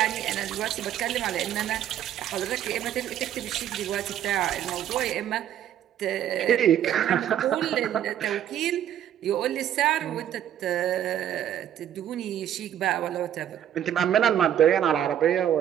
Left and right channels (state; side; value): quieter; left; 10.6 dB